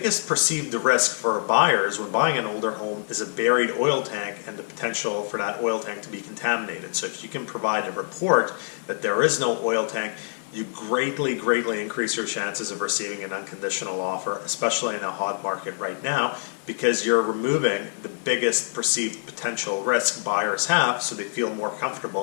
perceived risk for buyers when buying an older home is a buried oil tank and the potential for that oil tank to be contaminated. So if you can provide a report that there is no oil tank, you greatly increase your chances of receiving an unconditional offer, especially in a hot market right now, because you're removing the biggest perceived potential risk buyers have, so they feel more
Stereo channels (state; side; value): silent; right; 55 dB below the other